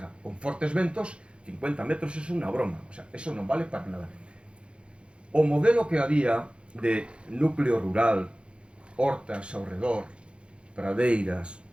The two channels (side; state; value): left; late; 0.057 ms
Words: con fortes ventos, 50 metros é unha broma, o sea, eso non vale para nada. O modelo que había de núcleo rural, hortas ao redor, pradeiras,